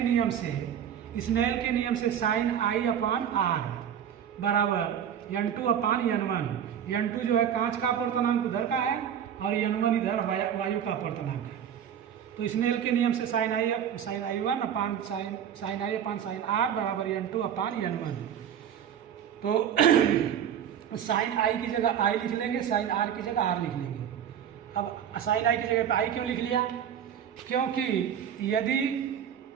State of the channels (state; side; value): quieter; left; 9.1 dB